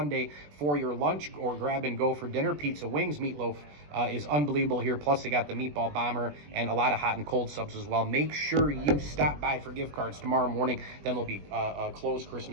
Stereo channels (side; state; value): left; late; 20 ms